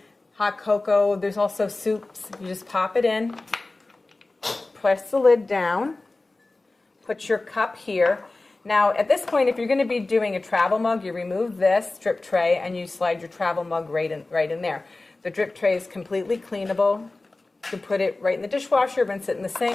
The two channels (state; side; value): quieter; right; 3.2 dB